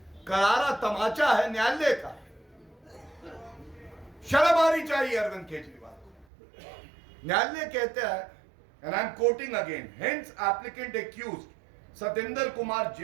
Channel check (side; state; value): left; drops out; at 6.2 s